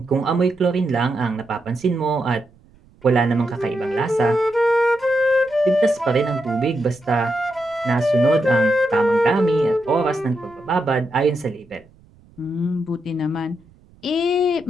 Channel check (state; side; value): noise; right; rumble, 28 dB below the sound